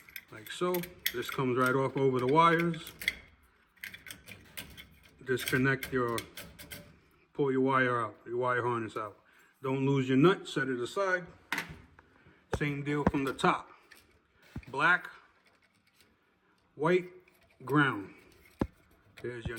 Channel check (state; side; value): identical; both; correlation 1.00